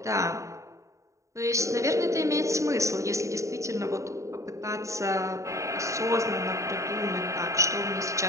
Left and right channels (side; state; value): left; late; 0.15 ms